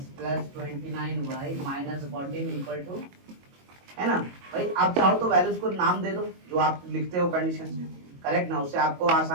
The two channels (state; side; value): late; left; 22 ms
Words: plus 29y minus 14 equal to, है ना। भाई आप चाहो तो वैल्यूज को नाम दे दो जो आप लिखते हो कंडीशन में, करेक्ट ना, उससे आपको